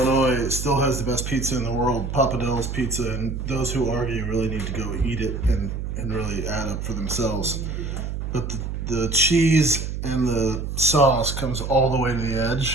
it still has the best pizza in the world, Papa Del's Pizza, and those who argue really need to go eat it and really add up for themselves. But the cheese and the sauce comes all the way to the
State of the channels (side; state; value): right; noise; hum, 4 dB below the sound